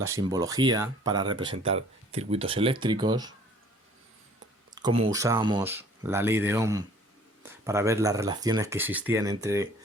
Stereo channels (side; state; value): both; normal; correlation 0.54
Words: simbología para representar circuitos eléctricos, cómo usábamos la ley de Ohm para ver las relaciones que existían entre